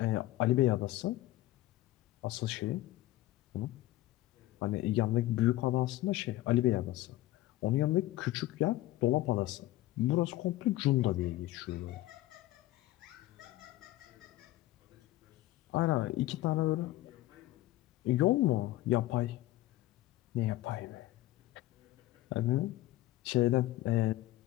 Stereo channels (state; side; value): quieter; right; 16.3 dB